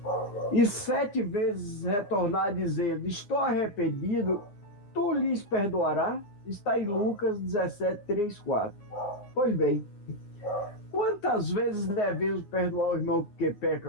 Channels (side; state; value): right; late; 9.7 ms